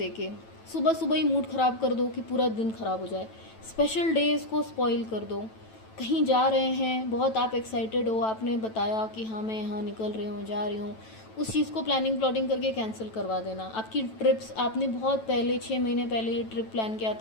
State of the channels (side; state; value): right; late; 9.1 ms